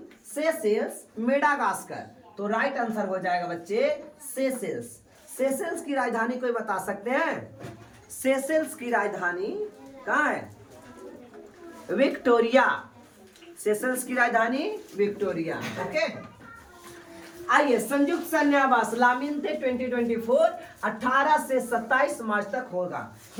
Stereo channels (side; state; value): both; identical; correlation 1.00